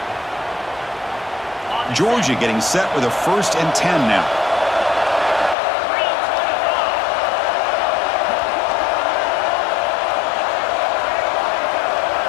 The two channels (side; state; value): right; drops out; at 5.6 s